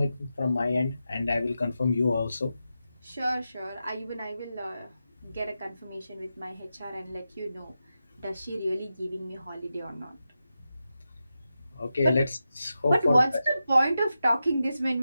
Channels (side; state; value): both; inverted; correlation -0.90